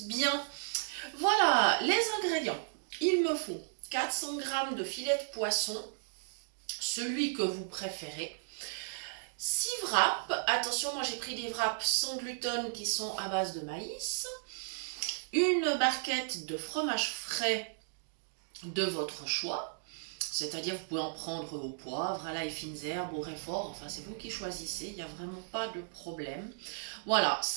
bien. Voilà, les ingrédients. Il me faut 400 g de filet de poisson, celui que vous préférez. 6 wraps, attention, moi j'ai pris des wraps sans gluten qui sont à base de maïs. Une barquette de fromage frais de votre choix, c'est-à-dire vous pouvez en prendre au poivre, à l'ail, fines herbes, au réfort, enfin c'est vous qui choisissez, il n'y a vraiment pas de problème. Voilà,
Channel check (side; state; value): left; silent; digital silence